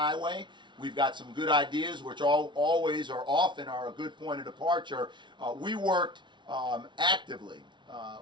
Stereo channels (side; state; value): left; late; 0.23 ms